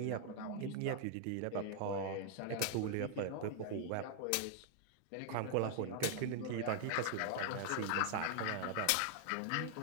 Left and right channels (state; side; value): different; both; correlation 0.00